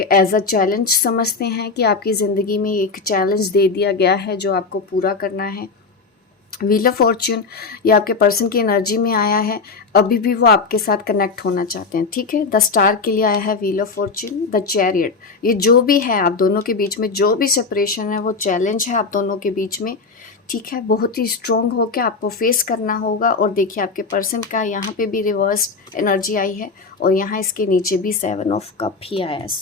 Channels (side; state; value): right; quieter; 4.5 dB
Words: अ चैलेंज समझते हैं कि आपकी ज़िंदगी में एक चैलेंज दे दिया गया है जो आपको पूरा करना है। व्हील ऑफ फॉर्च्यून ये आपके पर्सन की एनर्जी में आया है, अभी भी वो आपके साथ कनेक्ट होना चाहते हैं, ठीक है। द स्टार के लिए आया है wheel of Fortune, the chariot. ये जो भी है आप दोनों के बीच में, जो भी सेपरेशन है वो चैलेंज है आप दोनों के बीच में, ठीक है। बहुत ही स्ट्रॉन्ग होकर आपको फेस करना होगा। और देखिए आपके पर्सन का यहाँ पे भी रिवर्स एनर्जी आई है और यहाँ इसके नीचे भी 7 ऑफ कप ही आया है।